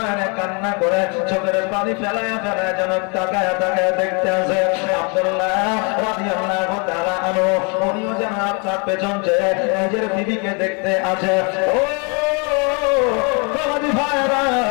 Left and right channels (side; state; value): right; quieter; 34.3 dB